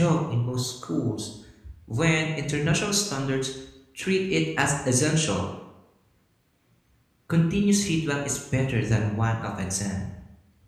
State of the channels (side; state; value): both; identical; correlation 1.00